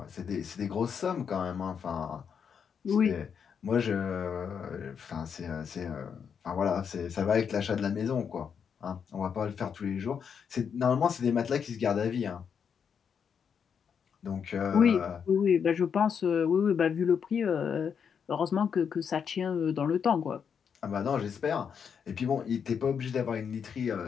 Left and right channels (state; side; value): quieter; right; 7.0 dB